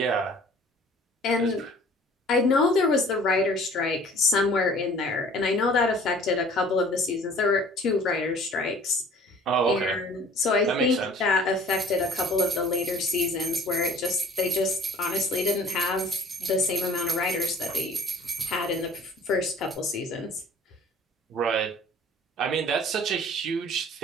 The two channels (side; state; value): both; normal; correlation 0.50